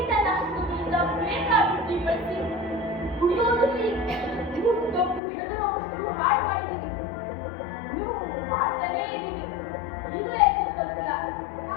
ಬೇಕಾಬಿಟ್ಟಿ ಬಳಸಿ ಕುಡಿಯೋದ್ರಲ್ಲಿ ತಪ್ಪು ಹೆದರುವಷ್ಟು ಹಾಳು ಮಾಡಿದ್ದೀವಿ. ನೀವು ಮಾಡ್ತಾನೇ ಇದ್ದೀವಿ. ಈಗಲೇ ಎಚ್ಚರಿಸಲ್ತಿಲ್ಲ.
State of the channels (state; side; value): drops out; right; at 5.2 s